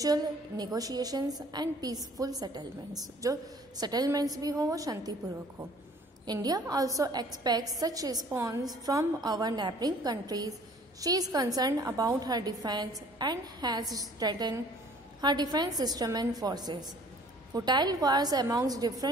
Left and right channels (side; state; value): both; normal; correlation 0.54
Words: negotiations and peaceful settlements. जो सेटलमेंट्स भी हो वो शांतिपूर्वक हो. India also expects such response from our neighbouring countries. She is concern about her defence and has strengthened her defence system and forces. Futile wars amongst